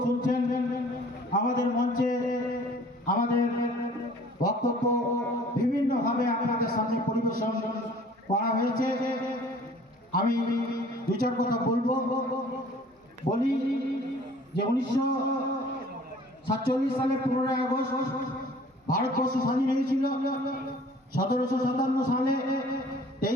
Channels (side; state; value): both; normal; correlation 0.51